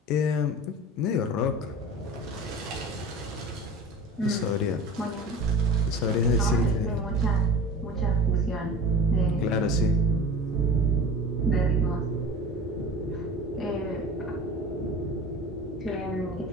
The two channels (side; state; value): both; normal; correlation 0.36